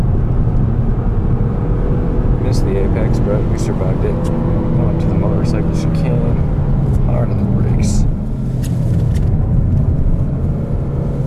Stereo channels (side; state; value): both; identical; correlation 1.00